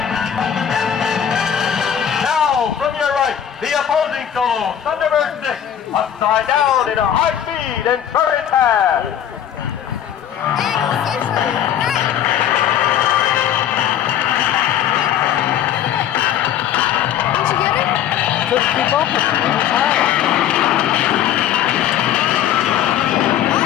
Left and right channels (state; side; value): quieter; right; 9.9 dB